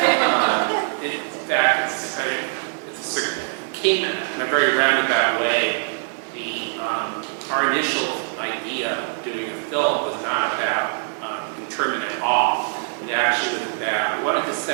fact, it came in a very roundabout way. Our initial idea of doing a film was not about internment at all. It actually was about, we wanted to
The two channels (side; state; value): left; silent; digital silence